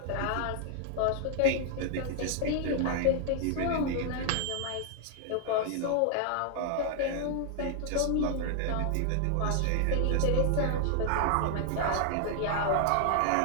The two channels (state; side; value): different; both; correlation 0.00